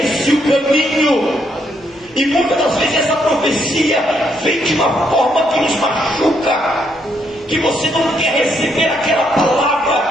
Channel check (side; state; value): right; noise; hum, 29 dB below the sound